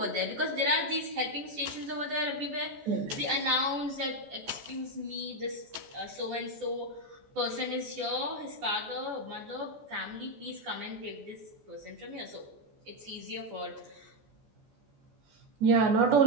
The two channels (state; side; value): late; left; 14 ms